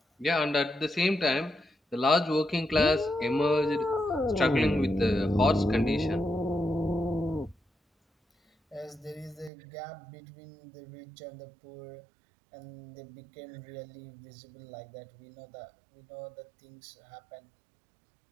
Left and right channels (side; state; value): left; drops out; at 9.5 s